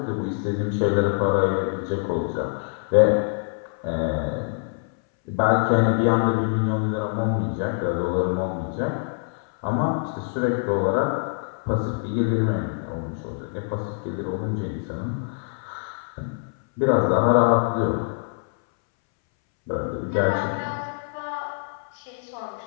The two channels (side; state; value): right; silent; 62 dB below the other